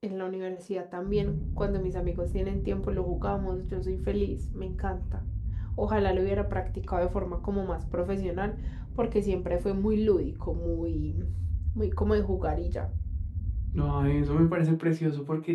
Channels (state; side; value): identical; both; correlation 1.00